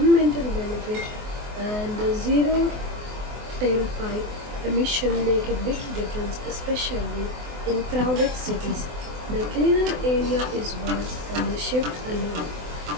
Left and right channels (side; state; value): left; late; 24 ms